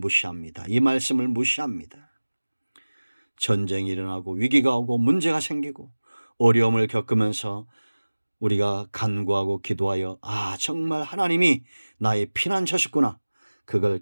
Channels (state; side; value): inverted; both; correlation -1.00